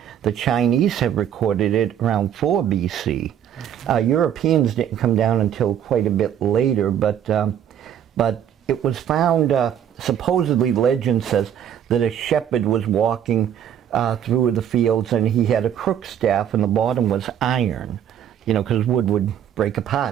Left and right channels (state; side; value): quieter; left; 9.5 dB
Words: The Chinese have recorded it around 4 BC. Europeans didn't come down until quite a bit later, but it was found, supposedly legend says, that a shepherd was walking through the fields and he had a crook staff and the bottom was iron, because wood would break